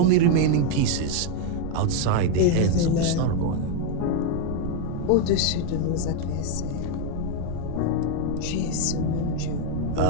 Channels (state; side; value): different; both; correlation 0.01